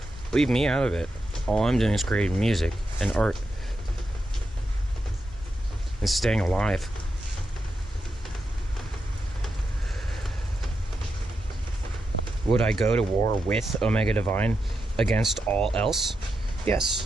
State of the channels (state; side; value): normal; both; correlation 0.86